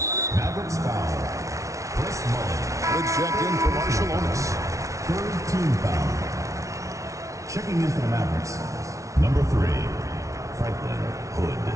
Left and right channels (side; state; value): left; late; 0.15 ms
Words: Mavericks foul. Chris Mullin. Good check in for Marciulionis. Third team foul. Checking in for the Mavericks, number 3, Franklin Hood.